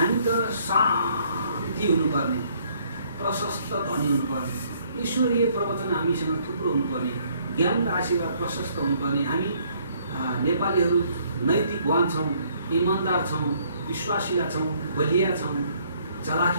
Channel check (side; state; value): both; inverted; correlation -0.65